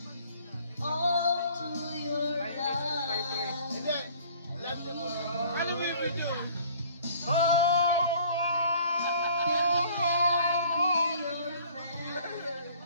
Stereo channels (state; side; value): inverted; both; correlation -0.54